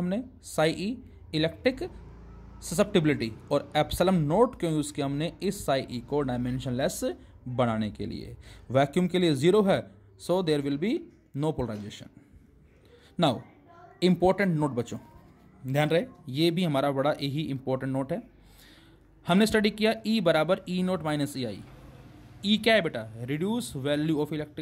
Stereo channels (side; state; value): both; identical; correlation 1.00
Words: साई ई इलेक्ट्रिक ससेप्टिबिलिटी, और एप्सिलॉन नोट क्यों यूज़ किया हमने, इस साई ई को डायमेंशनलेस बनाने के लिए। वैक्यूम के लिए 0 है, so there will be no polarisation. Now important note बच्चों, ध्यान रहे, ये भी हमारा बड़ा यही इंपॉर्टेंट नोट है। हमने स्टडी किया E बराबर ई नोट माइनस ई आई। ई क्या है बेटा, reduce value of